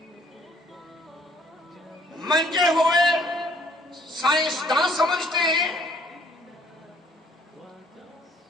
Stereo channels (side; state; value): both; normal; correlation 0.61